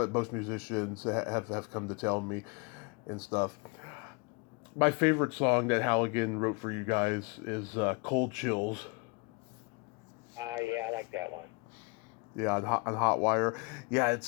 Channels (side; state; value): right; quieter; 30.1 dB